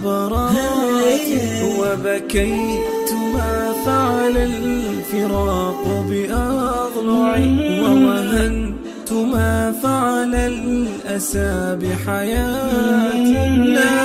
وبكيت ما فعل الفراق بأضلعي ووهنت ما فعل الأسى بحياتي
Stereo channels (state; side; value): identical; both; correlation 1.00